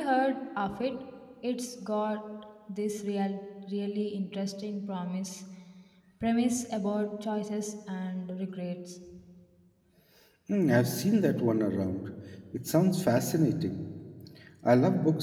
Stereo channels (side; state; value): both; identical; correlation 1.00